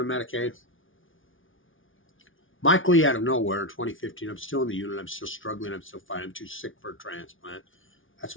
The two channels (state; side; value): late; right; 0.57 ms